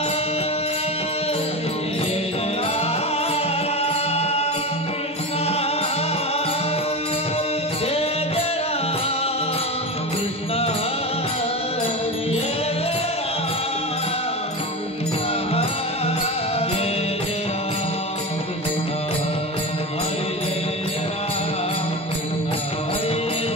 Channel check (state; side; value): normal; both; correlation 0.24